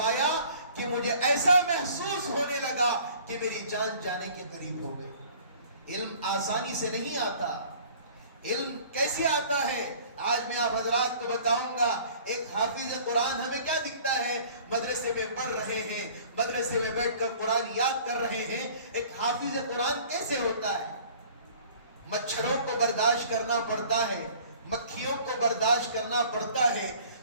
کہ مجھے ایسا محسوس ہونے لگا کہ میری جان جانے کے قریب ہو گئی۔ علم آسانی سے نہیں آتا۔ علم کیسے آتا ہے؟ آج میں آپ حضرات کو بتاؤں گا۔ ایک حافظ قرآن ہمیں کیا دکھتا ہے؟ مدرسے میں پڑھ رہے ہیں، مدرسے میں بیٹھ کر قرآن یاد کر رہے ہیں۔ ایک حافظ قرآن کیسے ہوتا ہے؟ مچھروں کو برداشت کرنا پڑتا ہے، مکھیوں کو برداشت کرنا پڑتا ہے،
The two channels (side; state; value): both; inverted; correlation -0.50